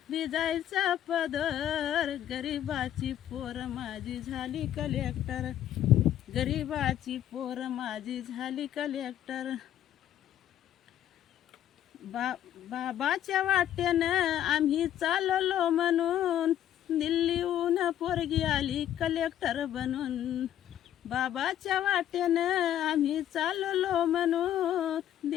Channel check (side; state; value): right; quieter; 11.3 dB